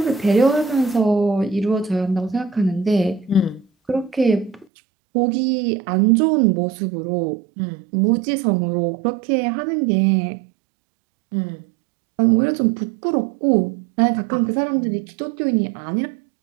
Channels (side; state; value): left; drops out; at 4.7 s